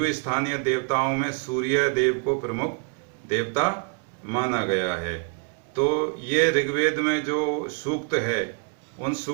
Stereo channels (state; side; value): quieter; left; 37.3 dB